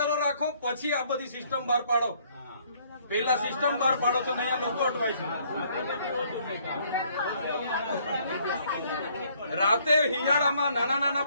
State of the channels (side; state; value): both; inverted; correlation -0.64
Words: રાખો, પછી આ બધી સિસ્ટમ બહાર પાડો. પહેલા સિસ્ટમ બહાર પાડો તો અહીંયા લોકો અટવાય છે. રાતે હિયાળામાં નાના